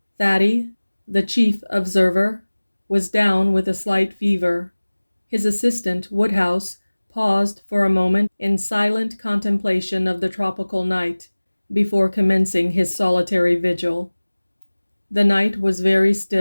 Thady, the chief observer, was down with a slight fever. His assistant, Woodhouse, paused for a moment in silent contemplation of the tropical night before commencing his solitary vigil. The night was very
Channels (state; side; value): inverted; both; correlation -1.00